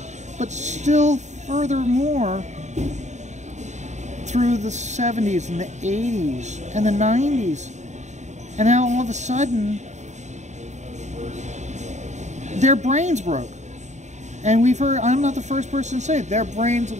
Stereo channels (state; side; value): late; left; 0.34 ms